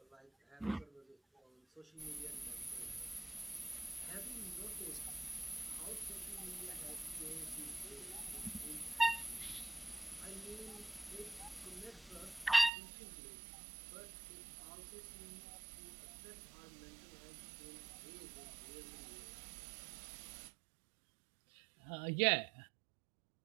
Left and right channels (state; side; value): drops out; left; at 12.7 s